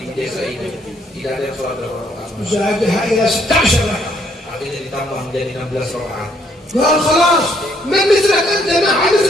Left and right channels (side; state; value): both; normal; correlation 0.69